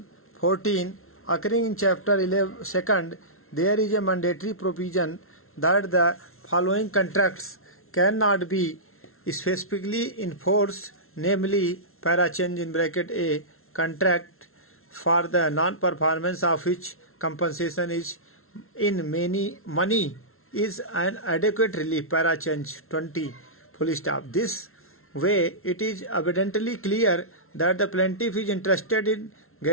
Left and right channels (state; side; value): late; right; 0.62 ms